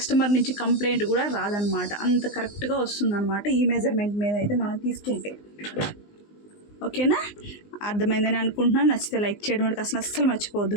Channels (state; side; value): late; right; 19 ms